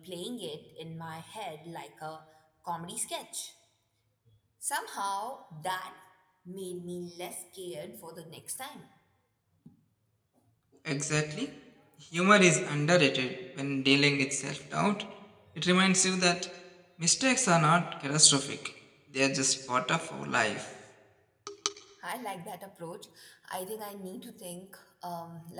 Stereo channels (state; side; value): identical; both; correlation 1.00